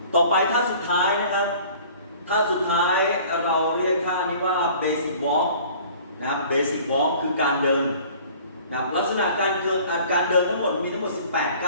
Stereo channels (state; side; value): inverted; both; correlation -0.49